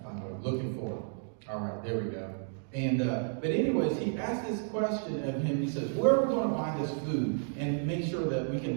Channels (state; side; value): silent; left; digital silence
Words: find what I'm looking for. All right, there we go. And but anyways, he asked this question of him. He says, where are we going to buy this food and make sure that we